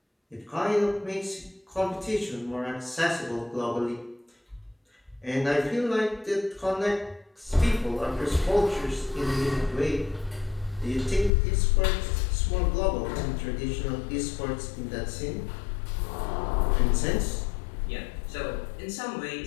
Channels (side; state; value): right; drops out; at 11.3 s